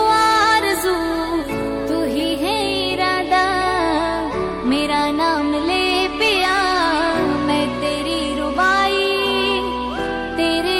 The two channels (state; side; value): identical; both; correlation 1.00